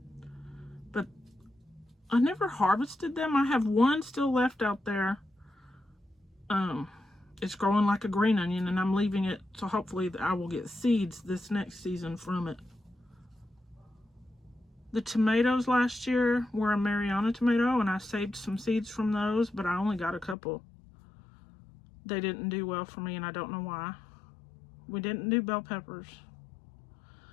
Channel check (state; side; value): drops out; right; at 20.4 s